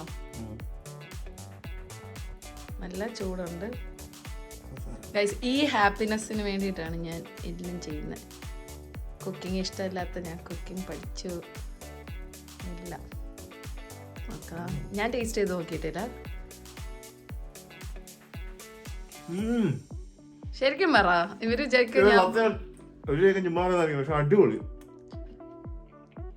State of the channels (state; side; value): identical; both; correlation 1.00